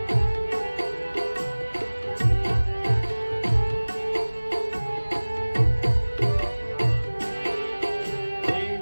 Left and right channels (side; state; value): both; inverted; correlation -1.00